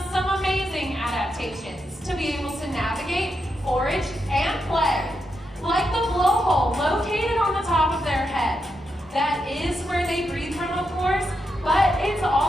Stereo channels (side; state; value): both; normal; correlation 0.84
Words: some amazing adaptations to be able to navigate, forage, and play. Like the blowhole located on the top of their head. That is where they breathe from, of course, but it's